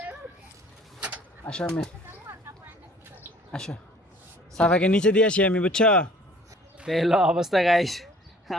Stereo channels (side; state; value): both; normal; correlation 0.53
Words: আসো আমি, আসো সাফাকে নিচে দিয়ে আসি আমি, বুঝছো? তো এলো অবস্থা গাইস।